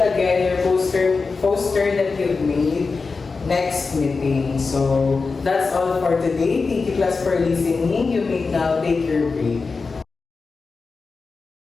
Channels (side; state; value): right; quieter; 4.4 dB